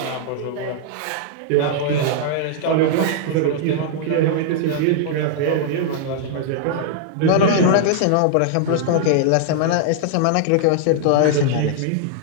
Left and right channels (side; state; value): both; different; correlation -0.01